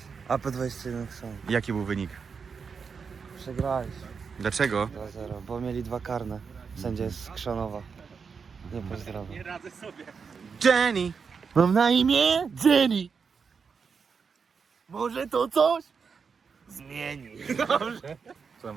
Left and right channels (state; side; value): quieter; left; 5.7 dB